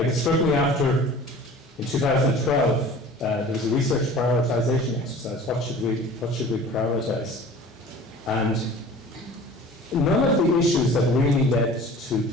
it struck me after, in 2012, there was a research prioritization exercise. What should we prioritize? And none of the issues that really led to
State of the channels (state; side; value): normal; both; correlation 0.43